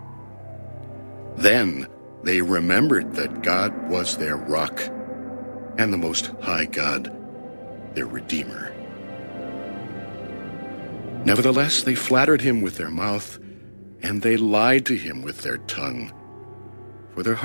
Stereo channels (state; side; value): inverted; both; correlation -1.00